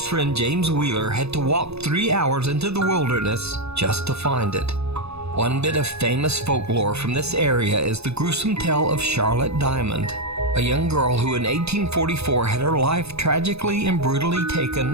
friend James Wheeler had to walk 3 hours into the wilderness just to find it. One bit of famous folklore from this area is the gruesome tale of Charlotte Diamond, a young girl who in 1844 had her life tragically and brutally taken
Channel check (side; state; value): left; late; 0.79 ms